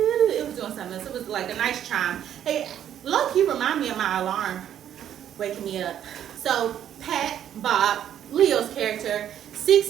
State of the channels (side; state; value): left; quieter; 10.3 dB